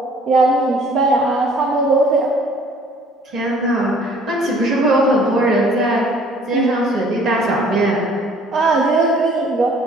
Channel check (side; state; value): both; normal; correlation 0.55